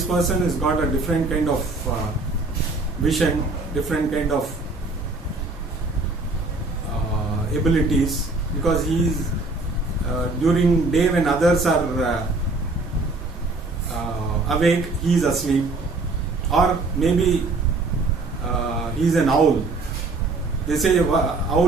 person has got a different kind of vision, different kind of abilities, because he is during day when others are awake, he is asleep, or maybe he is an owl. They say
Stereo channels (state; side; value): quieter; left; 3.4 dB